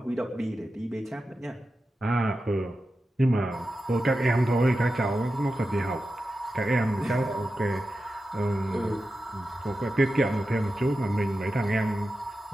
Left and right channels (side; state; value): both; normal; correlation 0.92